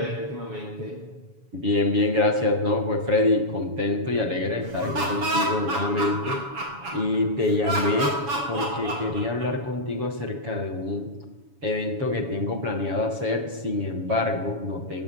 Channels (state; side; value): late; left; 7.1 ms